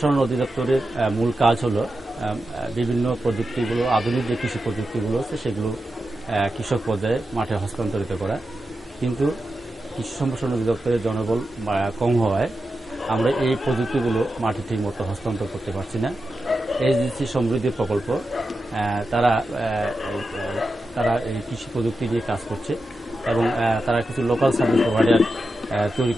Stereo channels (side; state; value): both; normal; correlation 0.90